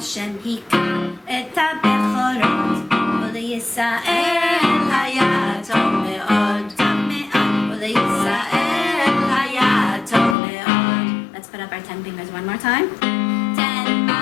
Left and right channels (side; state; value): right; drops out; at 10.4 s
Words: Hika et HaBechorot, Uleyisael Hayatov Me'od, Tov Me'od, Uleyisael Hayatov Me'od. Let's put up our 10 fingers one more time. 10